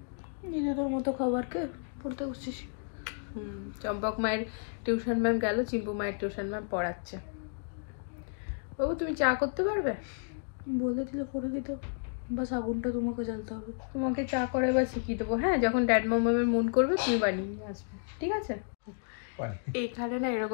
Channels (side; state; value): right; silent; digital silence